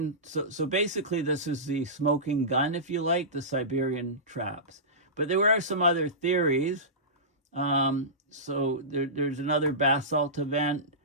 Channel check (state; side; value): normal; both; correlation -0.19